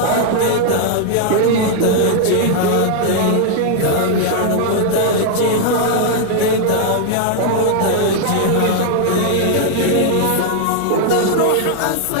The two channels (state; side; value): different; both; correlation 0.00